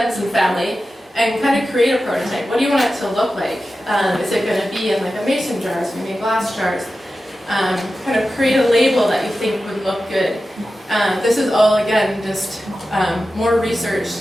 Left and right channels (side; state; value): both; normal; correlation 0.93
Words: and family, and kind of create a prototype. What do you want it to look like? Is it going to be in like a mason jar, is it going to be glass jars? Kind of create a label that you think would look good. This is all, again, just more research